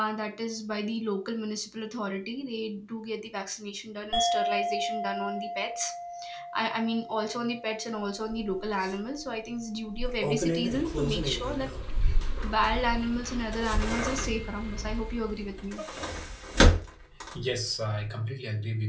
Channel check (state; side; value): identical; both; correlation 1.00